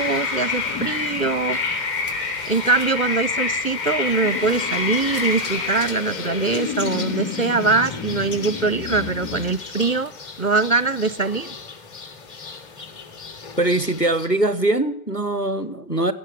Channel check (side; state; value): right; late; 2.1 ms